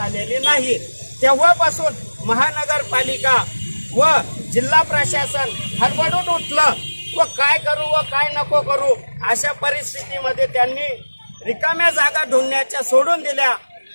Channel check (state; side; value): inverted; both; correlation -1.00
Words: नाही। तेव्हापासून महानगरपालिका व जिल्हा प्रशासन हडबडून उठलं व काय करू व काय नको करू अशा परिस्थितीमध्ये त्यांनी रिकाम्या जागा ढूंढण्याच्या सोडून दिल्या।